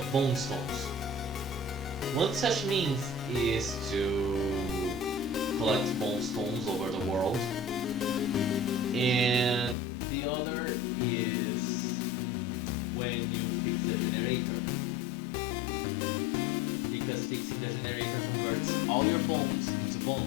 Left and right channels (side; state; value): right; drops out; at 9.8 s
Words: bone stones. One such means is to collect bone stones over the world, and the other is when you fix the generator, because fixing the generator converts all your bones into